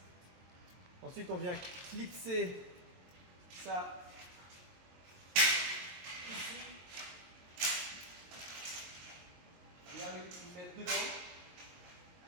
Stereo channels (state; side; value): late; left; 22 ms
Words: Ensuite, on vient clipser ça ici. Bien le mettre dedans.